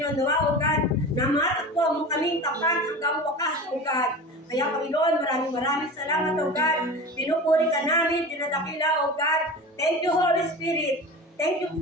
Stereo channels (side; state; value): both; normal; correlation 0.32